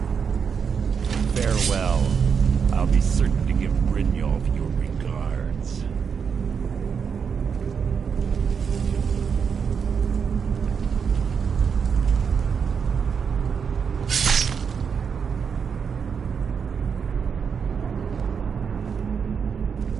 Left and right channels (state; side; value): quieter; left; 6.5 dB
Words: Farewell. I'll be certain to give Brynjolf your regards.